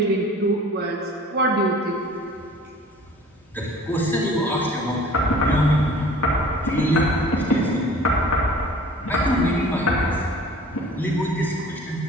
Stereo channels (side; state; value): both; normal; correlation 0.47